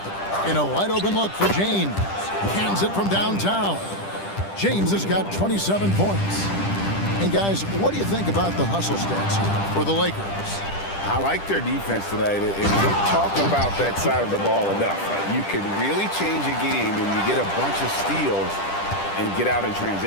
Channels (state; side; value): late; right; 10 ms